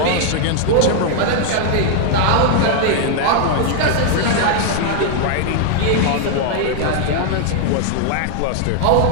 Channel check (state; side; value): different; both; correlation 0.00